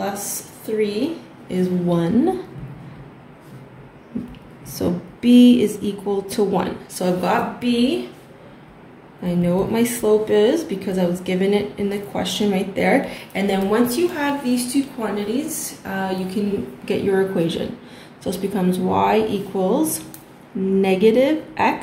3 is 1. So b is equal to 1. So I've got b. I know what my slope is because I was given it in the question right there. And then once you have these two quantities, you can get your equation. So this becomes y equals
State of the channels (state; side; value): identical; both; correlation 1.00